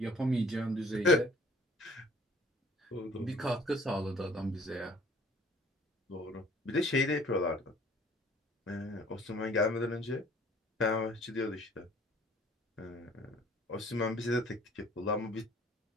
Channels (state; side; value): normal; both; correlation 0.54